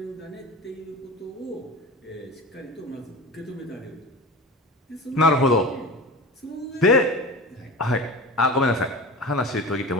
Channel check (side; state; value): both; normal; correlation 0.32